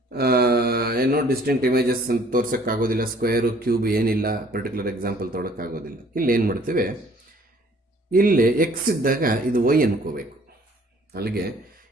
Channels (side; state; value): both; normal; correlation 0.56